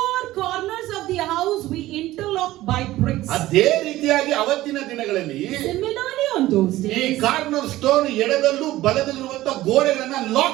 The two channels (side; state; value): left; quieter; 16.2 dB